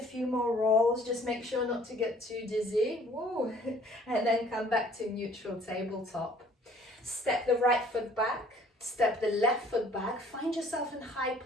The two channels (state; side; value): normal; both; correlation 0.55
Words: few more rolls, just make sure not to get too dizzy. Woo. And then come back to neutral tabletop. Step the right foot back, step the left foot back, find yourself in high